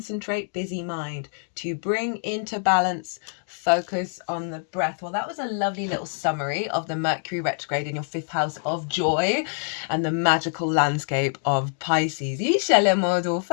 busy mind. To bring into balance, focus on the breath. Well, that was a lovely little summary of the Mercury retrograde in your fifth house of joy and the magical landscape of Pisces. Right.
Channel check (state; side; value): silent; right; digital silence